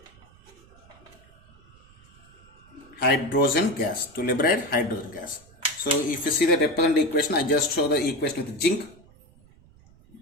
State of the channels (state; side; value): noise; right; rumble, 27 dB below the sound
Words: hydrogen gas. So if you see the representative equation, I just show the equation with zinc.